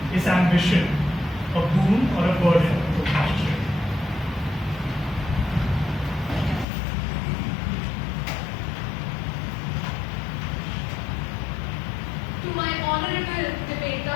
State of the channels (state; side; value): drops out; right; at 6.7 s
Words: Is ambition a boon or a burden? Toastmaster Shreya. To my honorable